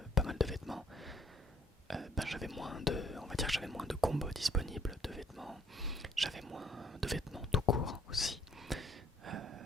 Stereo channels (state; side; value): normal; both; correlation 0.64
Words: pas mal de vêtements, ben j'avais moins de, on va dire que j'avais moins de combos disponibles de vêtements. J'avais moins de vêtements tout court aussi.